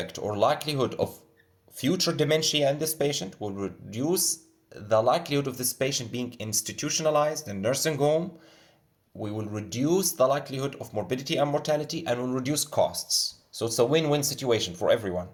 or likelihood of future dementia in this patient, will reduce the likelihood of this patient being institutionalized in nursing home. We will reduce the likelihood of morbidity and mortality, and will reduce costs. So it's a win-win situation for everyone.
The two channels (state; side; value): identical; both; correlation 1.00